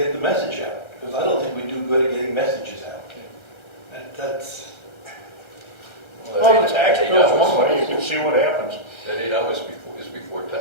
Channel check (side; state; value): right; late; 1.3 ms